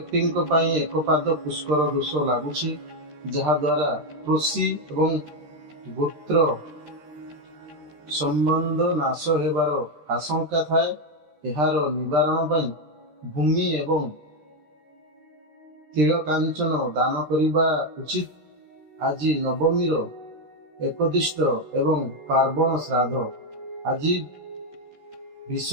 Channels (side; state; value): left; late; 13 ms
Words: एक पाद पुष्कर दोष लगुछि, जहा द्वारा कृषि एवं गोत्र संबंध नाश हेबार आशंका थाए। एहार निवारण पई भूमि एवं तिलकांचन दान करिबा उचित। आज नवमीर एकदिष्ट एवं पार्वण श्राद्ध। आज